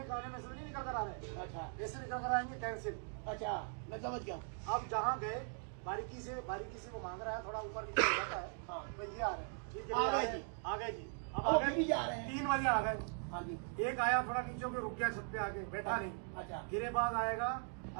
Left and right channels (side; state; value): left; silent; 51 dB below the other